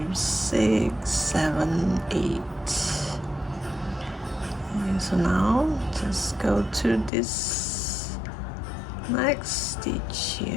6, 7, 8. And so now just go to this next stitch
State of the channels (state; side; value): drops out; right; at 7.1 s